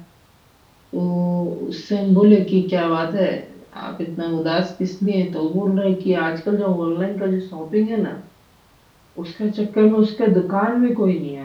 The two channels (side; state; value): both; identical; correlation 1.00